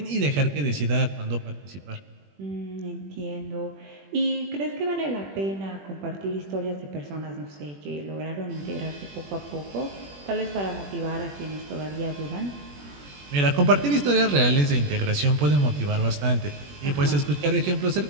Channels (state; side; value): late; left; 21 ms